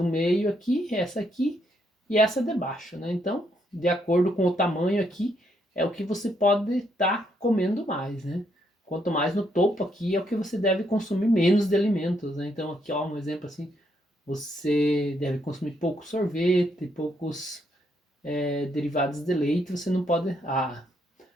meio aqui, essa aqui e essa de baixo, né? Então, de acordo com o tamanho aqui, é o que você pode estar comendo mais, né? Quanto mais no topo aqui, é o que você deve consumir menos de alimentos, né? Então, aqui, ó, um exemplo assim, você deve consumir pouco sorvete, poucos derivados de leite, você não pode...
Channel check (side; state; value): both; normal; correlation 0.75